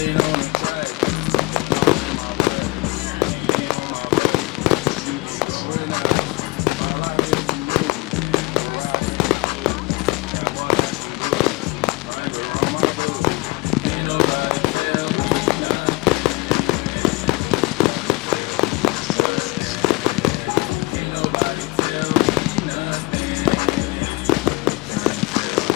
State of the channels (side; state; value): right; quieter; 23.0 dB